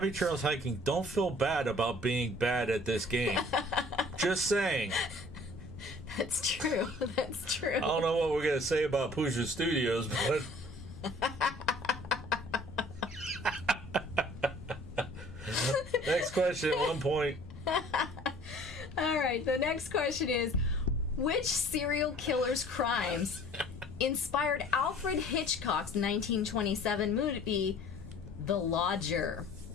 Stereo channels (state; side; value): noise; left; rumble, 14 dB below the sound